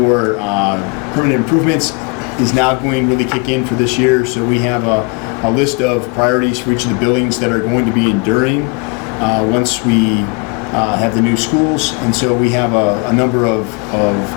permanent improvements is now going to really kick in for this year. So we have a list of priorities for each of the buildings that are going to be enduring once we have the new schools. And so we have a number of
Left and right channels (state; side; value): quieter; right; 32.6 dB